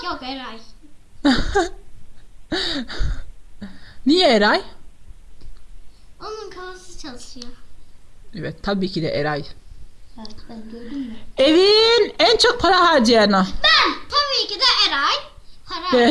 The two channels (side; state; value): both; identical; correlation 1.00